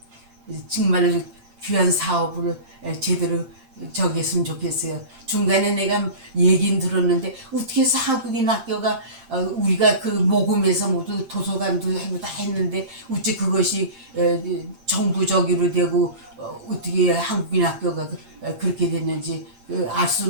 정말 귀한 사업을 제대로 저기 했으면 좋겠어요. 중간에 내가 얘기는 들었는데 어떻게 해서 한국인 학교가 우리가 그 모금에서 모두 도서관도 하고 다 했는데 어찌 그것이 정부적으로 되고 어떻게 한국인 학교가 그렇게 됐는지 알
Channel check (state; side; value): late; left; 8.7 ms